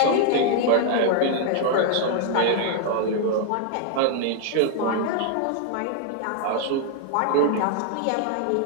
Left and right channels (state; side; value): different; both; correlation 0.00